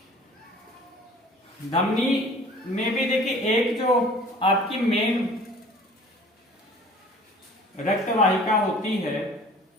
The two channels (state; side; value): normal; both; correlation 0.48